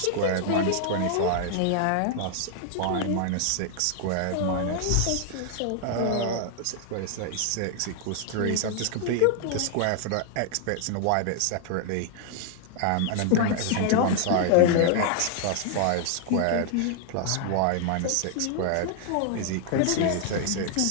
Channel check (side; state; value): both; different; correlation 0.00